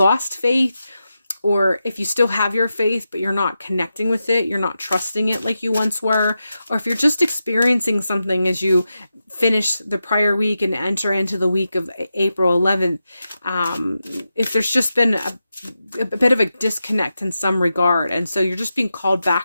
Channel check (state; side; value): inverted; both; correlation -0.89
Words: faith, or if you still have your faith, but you're not connecting with it, you're not trusting it like you once were, or if you're just experiencing something as you finish the prior week and enter into the week of April 11th, if there's just been a bit of a disconnect in some regard, and so you're just being called